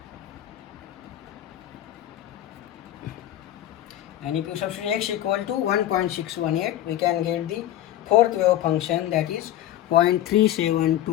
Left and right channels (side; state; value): right; quieter; 12.7 dB